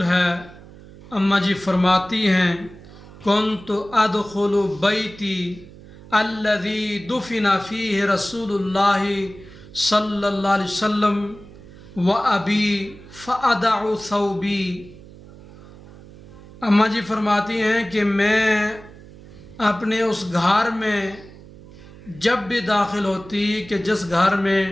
ہے۔ اما جی فرماتی ہیں کنت ادخل بیتی الذی دفن فیہ رسول اللہ صلی اللہ علیہ وسلم و ابی فادع ثوبی۔ اما جی فرماتی ہیں کہ میں اپنے اس گھر میں جب بھی داخل ہوتی کہ جس گھر میں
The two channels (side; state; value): right; noise; hum, 19 dB below the sound